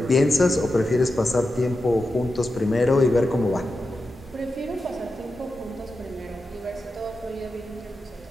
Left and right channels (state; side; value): normal; both; correlation 0.90